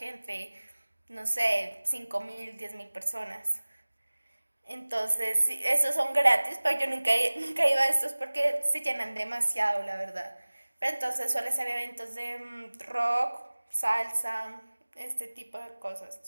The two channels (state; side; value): inverted; both; correlation -1.00